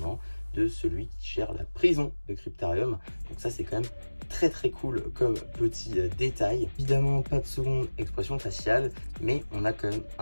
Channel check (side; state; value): both; inverted; correlation -1.00